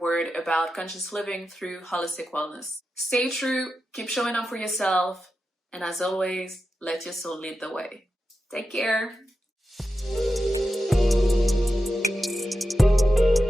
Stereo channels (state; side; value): normal; both; correlation 0.90